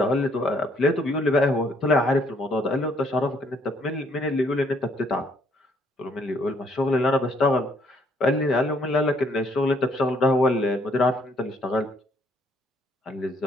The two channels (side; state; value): both; normal; correlation 0.66